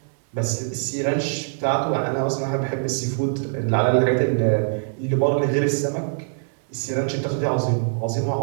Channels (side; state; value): left; silent; digital silence